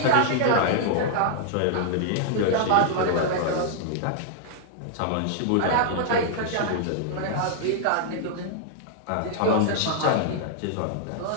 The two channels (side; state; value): both; different; correlation -0.01